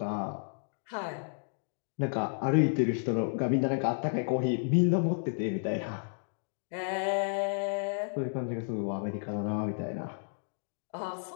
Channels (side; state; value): right; silent; digital silence